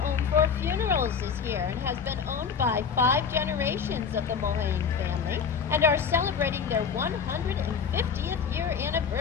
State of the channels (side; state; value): right; quieter; 6.4 dB